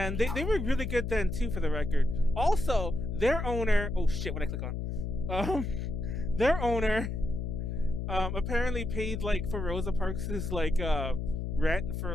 they were really good then too, for the record. Also, their owner, oh shit, what did I click on? Their owner apparently paid like for Rosa Parks' like rent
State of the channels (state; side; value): noise; left; hum, 3 dB below the sound